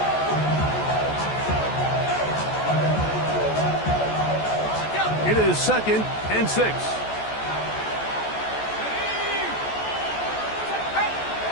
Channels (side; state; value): right; late; 14 ms